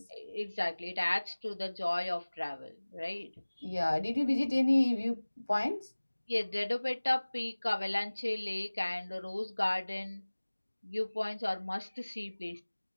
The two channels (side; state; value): both; inverted; correlation -1.00